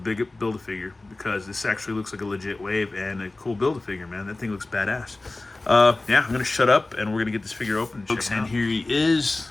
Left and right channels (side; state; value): right; quieter; 3.0 dB